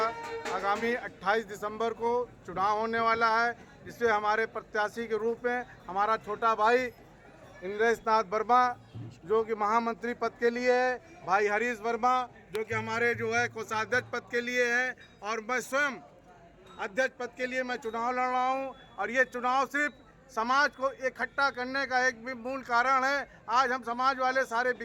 आगामी 28 दिसंबर को चुनाव होने वाला है, जिसमें हमारे प्रत्याशी के रूप में हमारा छोटा भाई इंद्रेश नाथ वर्मा जो कि महामंत्री पद के लिए है, भाई हरीश वर्मा जो कि हमारे जो है कोषाध्यक्ष पद के लिए है, और मैं स्वयं अध्यक्ष पद के लिए मैं चुनाव लड़ रहा हूँ। और ये चुनाव सिर्फ समाज को इकट्ठा करने का एक भी मूल कारण है। आज हम समाज वाले सारे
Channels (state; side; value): identical; both; correlation 1.00